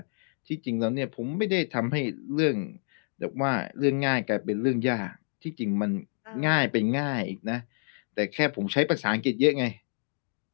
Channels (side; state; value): right; silent; digital silence